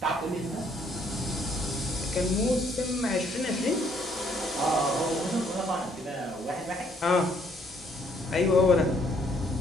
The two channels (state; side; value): normal; both; correlation 0.67